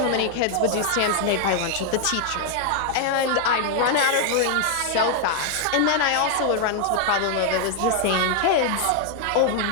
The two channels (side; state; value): both; different; correlation 0.00